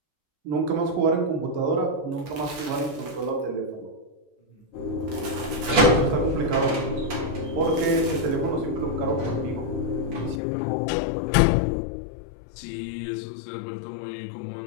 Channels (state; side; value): drops out; right; at 10.4 s